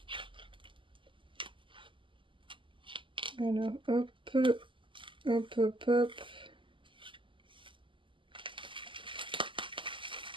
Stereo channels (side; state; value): left; late; 0.25 ms